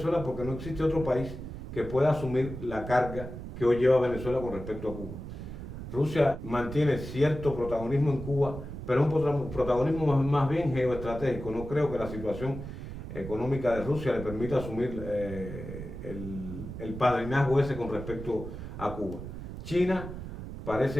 porque no existe otro país que pueda asumir la carga que hoy lleva Venezuela con respecto a Cuba. Rusia mantiene cierto protagonismo en Cuba, pero es un protagonismo más bien geoestratégico. No creo que la situación económica de Rusia le permita asumir el padrinazgo ese con respecto a Cuba. China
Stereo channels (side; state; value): right; noise; rumble, 9 dB below the sound